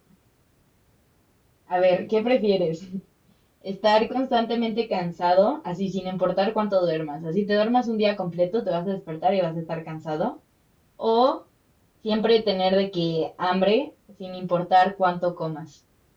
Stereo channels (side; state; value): both; identical; correlation 1.00